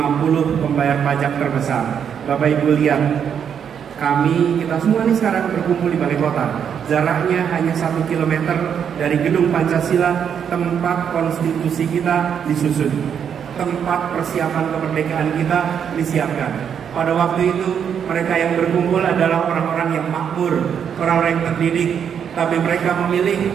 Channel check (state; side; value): quieter; left; 7.9 dB